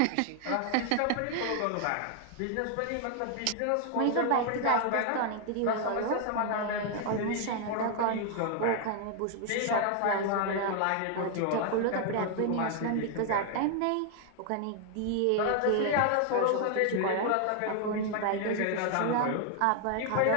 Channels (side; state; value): both; different; correlation 0.00